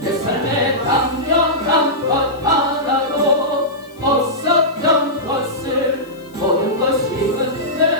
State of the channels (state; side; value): noise; left; hiss, 28 dB below the sound